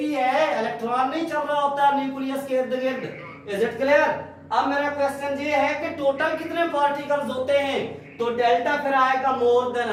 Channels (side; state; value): both; identical; correlation 1.00